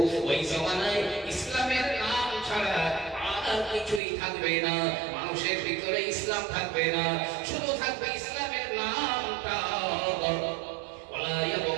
ওই জামানায় ইসলামের নাম ছাড়া আর কিছুই থাকবে না। মানুষের ভিতরে ইসলাম থাকবে না, শুধু থাকবে ইসলামের নামটা। ওয়ালা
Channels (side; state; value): left; drops out; at 4.0 s